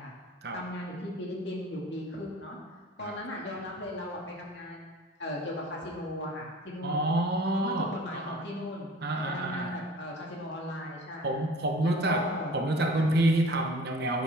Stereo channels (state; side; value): normal; both; correlation 0.46